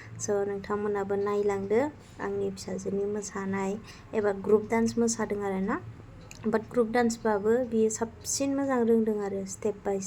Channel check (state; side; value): identical; both; correlation 1.00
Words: स' नोंथांमोनाबो नायलांदो आंनि फिसाजोनि मोसानाय, एबा ग्रुप डान्स मोसादों आरोना। बाट ग्रुप डान्सबाबो बियो साबसिन मोजां रोंदों आरो स्टेप बाय